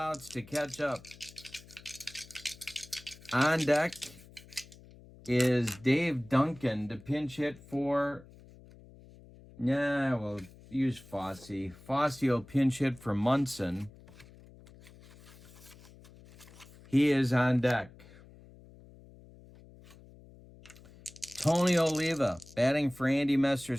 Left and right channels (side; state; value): left; noise; hum, 22 dB below the sound